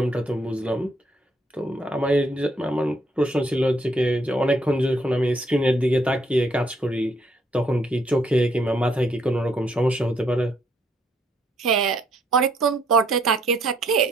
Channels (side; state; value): both; normal; correlation 0.71